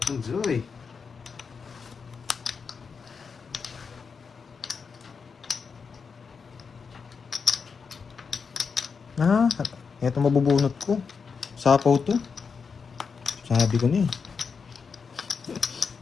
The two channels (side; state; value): right; quieter; 5.6 dB